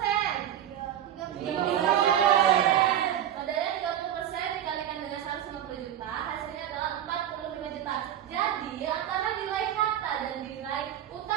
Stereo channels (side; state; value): left; quieter; 10.7 dB